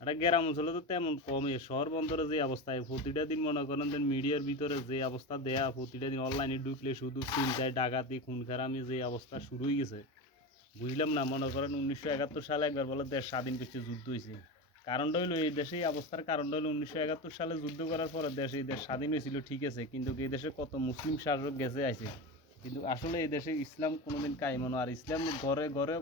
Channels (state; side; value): normal; both; correlation 0.23